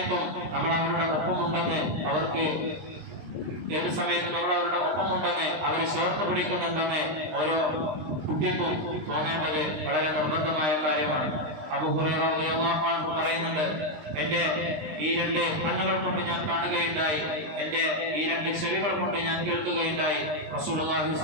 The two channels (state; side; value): late; left; 20 ms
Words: നമ്മൾ അവരുടെ ഒപ്പമുണ്ടെന്ന് അവരെ ചേർത്ത് പിടിക്കുന്നുണ്ടെന്ന് ഓരോ കുട്ടിക്കും തോന്നേണ്ടത് വളരെ നിർബന്ധമായ കാര്യമാണ്. അബൂ ഹുറൈറ റളിയല്ലാഹു അൻഹു പറയുന്നുണ്ട്, എന്റെ ഈ രണ്ട് കണ്ണുകൾ കൊണ്ട് ഞാൻ കാണുകയുണ്ടായി, എന്റെ ഈ രണ്ട് ചെവികൾ കൊണ്ട് ഞാൻ കേൾക്കുകയുണ്ടായി. റസൂലുള്ളാഹി